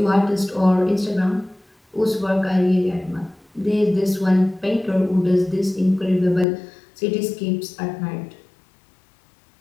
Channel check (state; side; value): drops out; right; at 6.5 s